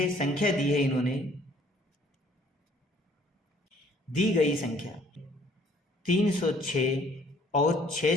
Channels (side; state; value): both; normal; correlation 0.59